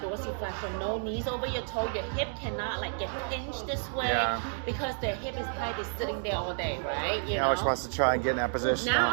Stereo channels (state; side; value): silent; left; 57 dB below the other